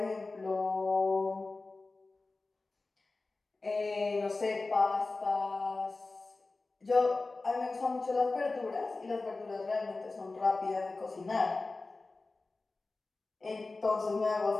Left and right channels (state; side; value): quieter; right; 3.5 dB